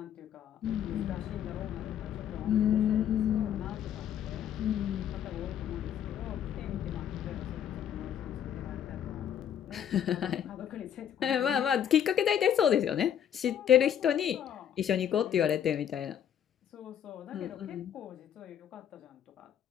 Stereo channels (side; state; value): right; quieter; 9.4 dB